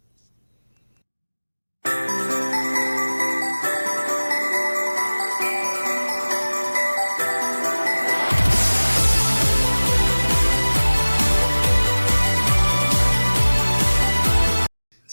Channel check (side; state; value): both; inverted; correlation -1.00